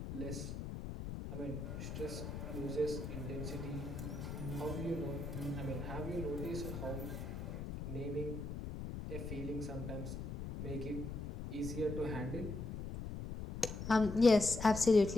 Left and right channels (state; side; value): noise; left; rumble, 6 dB below the sound